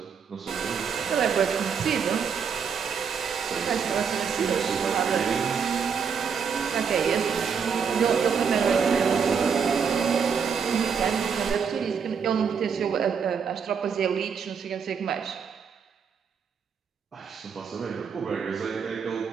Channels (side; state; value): left; quieter; 6.5 dB